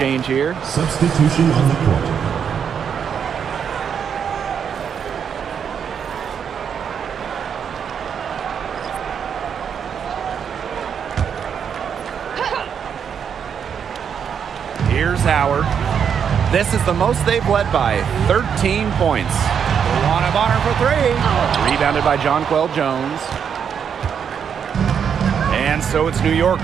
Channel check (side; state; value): left; quieter; 7.5 dB